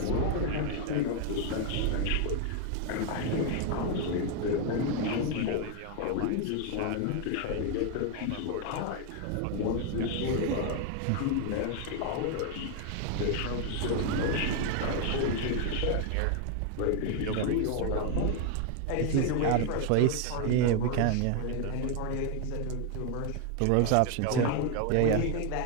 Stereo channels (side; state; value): both; different; correlation 0.01